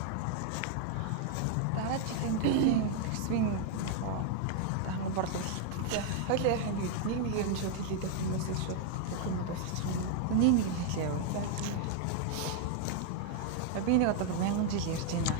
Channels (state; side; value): different; both; correlation 0.00